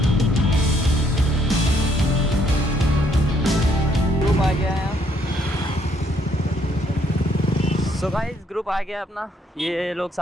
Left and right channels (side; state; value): both; normal; correlation 0.69